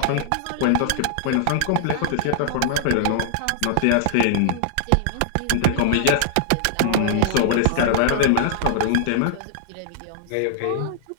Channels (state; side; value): different; both; correlation -0.01